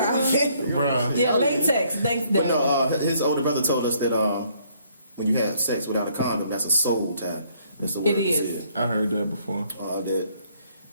Bruh. Yeah, latex. Thanks, But Dad. no, his older brother told us that when you have sex without a condom, that's a soul tie. That's the word It is. I heard that before.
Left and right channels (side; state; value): both; inverted; correlation -0.66